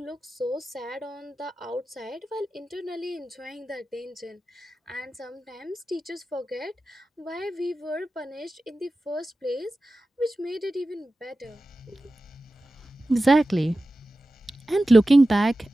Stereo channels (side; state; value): both; normal; correlation 0.94